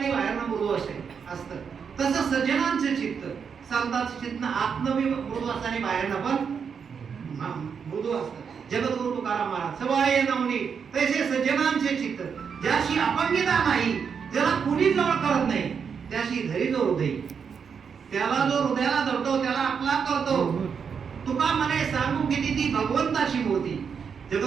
बाहेरनं मृदू असतं, तसं सज्जनांचे चित्त, संतांचे चित्त आत्मवी मृदू असताना बाहेरनं पण मृदू असतं। जगद्गुरु तुकाराम महाराज सवाय नवनी तैसे सज्जनांचे चित्त, ज्याशी अपंगिता नाही, ज्याला कुणी जवळ करत नाही, त्याशी धरी जो हृदय, त्याला जो हृदयाला धरतो त्याला आपला करतो। तुका म्हणे सांगू किती ती भगवंताची मूर्ती।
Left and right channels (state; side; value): quieter; left; 6.5 dB